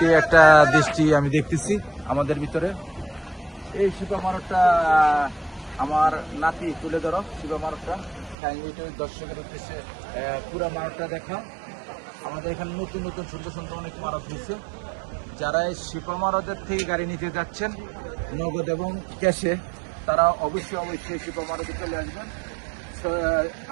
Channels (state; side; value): drops out; left; at 8.3 s